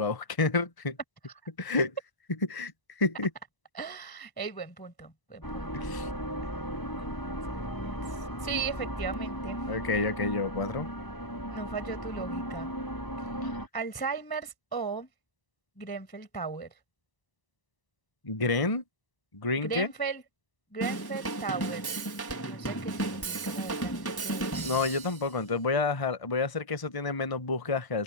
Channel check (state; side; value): late; right; 1.0 ms